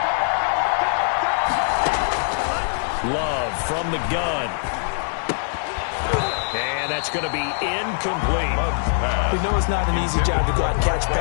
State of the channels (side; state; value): right; silent; digital silence